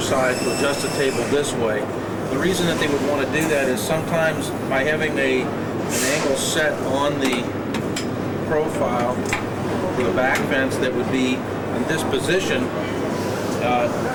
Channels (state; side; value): identical; both; correlation 1.00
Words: side to adjust the table this way. The reason that they would want to do that is sometimes by having an angle set on the profile for the back fence that would be in this position,